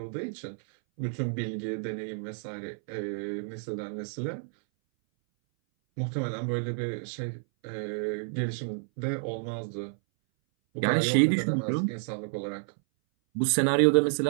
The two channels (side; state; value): left; silent; 58 dB below the other